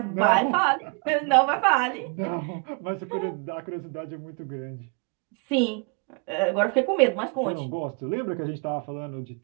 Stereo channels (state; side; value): quieter; left; 35.8 dB